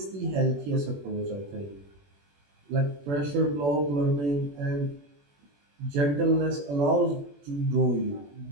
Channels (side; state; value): left; late; 21 ms